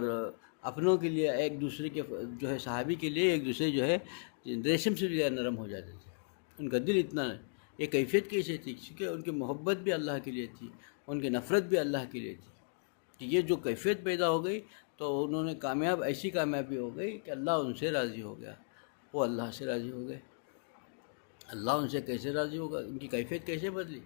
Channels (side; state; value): right; silent; digital silence